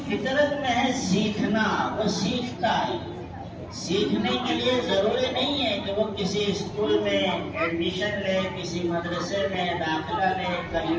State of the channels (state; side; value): identical; both; correlation 1.00